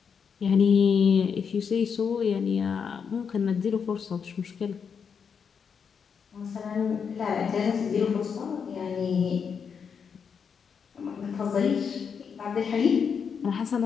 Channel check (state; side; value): quieter; right; 6.6 dB